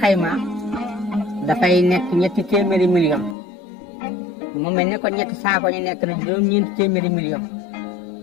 xaymaa dafay nekk ñetti téeméeri million mu mel ne ko ñetti saako ñu nekk na juróom-ñeenti téeméeri million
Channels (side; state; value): right; drops out; at 3.4 s